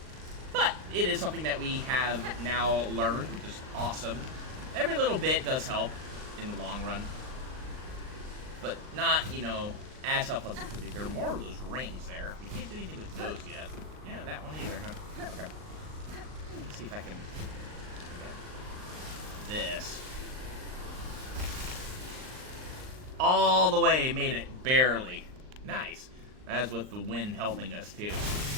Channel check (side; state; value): left; late; 39 ms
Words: But it is something that we have now learned, which is awesome. Every little bit does help in the long run. But not, as helpful as it could be. There are more of those rings there. We can't do anything with those yet. Yeah, that one either, huh? Okay. Let's see if I can get this. All the way, made it, barely. Nice. That's with the wind helping us, too.